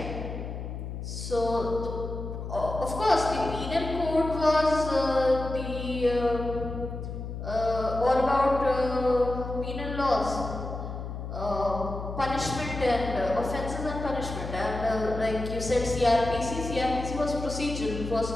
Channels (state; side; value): noise; left; hum, 7 dB below the sound